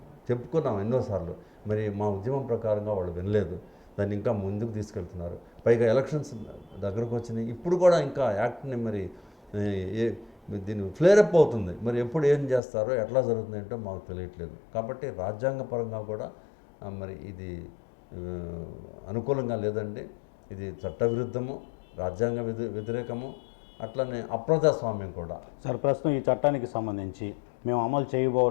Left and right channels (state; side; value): drops out; right; at 12.6 s